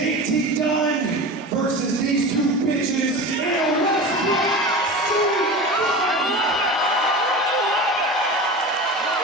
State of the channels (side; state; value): both; normal; correlation 0.31